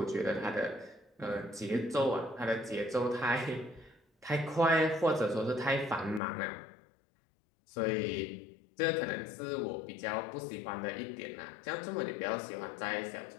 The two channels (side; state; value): right; drops out; at 6.2 s